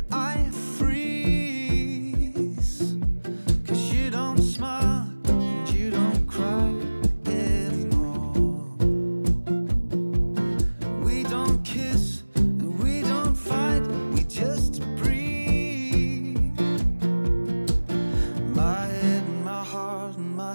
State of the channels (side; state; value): both; inverted; correlation -1.00